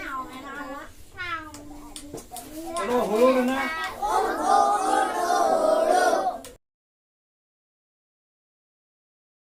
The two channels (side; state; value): both; identical; correlation 1.00